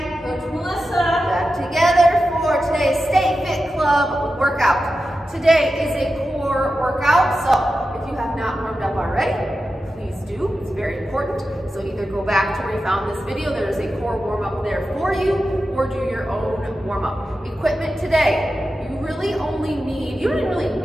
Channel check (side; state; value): both; normal; correlation 0.91